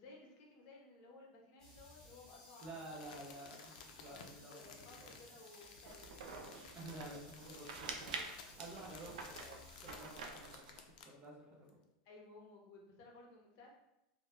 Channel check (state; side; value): normal; both; correlation 0.16